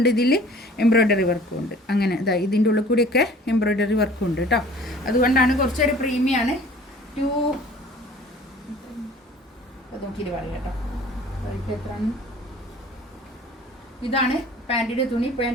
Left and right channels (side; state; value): both; normal; correlation 0.49